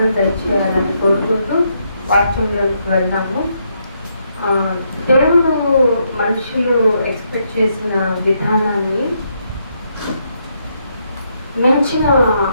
దయచేయాలని కోరుకుంటూ వాక్యంలోకి వెళ్దాము. దేవుడు మనుషులు ఎక్స్పెక్ట్ చేసిన విధానాన్ని మించిన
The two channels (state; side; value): inverted; both; correlation -0.77